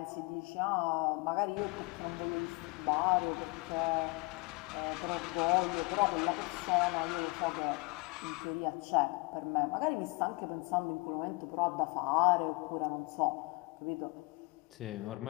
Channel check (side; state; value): right; quieter; 27.4 dB